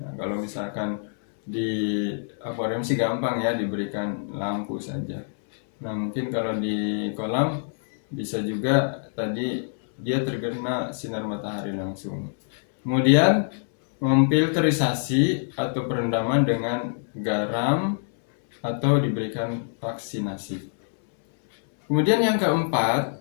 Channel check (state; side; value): silent; right; 62 dB below the other